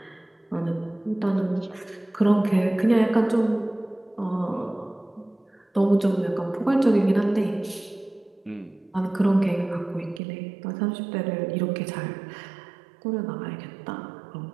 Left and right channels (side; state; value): left; drops out; at 10.2 s